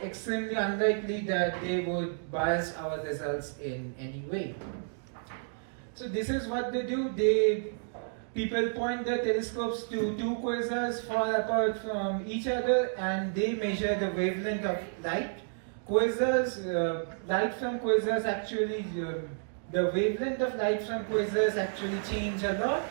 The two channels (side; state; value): left; silent; digital silence